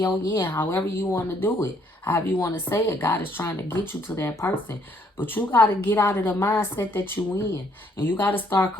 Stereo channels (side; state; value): both; normal; correlation 0.67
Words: yin, however you want to do it. However you want to say it, God is trying to get you to that person. But you got to get out of the mindset that you in. And you got to start